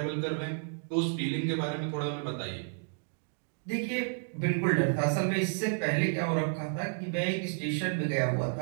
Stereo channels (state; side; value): silent; left; digital silence